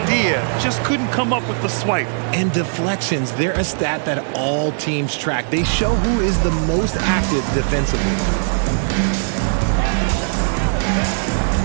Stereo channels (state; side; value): silent; left; digital silence